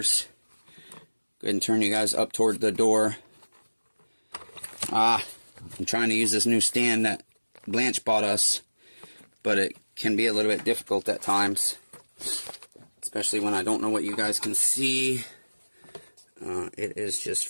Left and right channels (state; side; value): inverted; both; correlation -1.00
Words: Go ahead and turn you guys up toward the door. I'm trying to use this new stand that Blanche bought us, but it can be a little bit difficult at times, especially when I don't know what you guys can see. It is just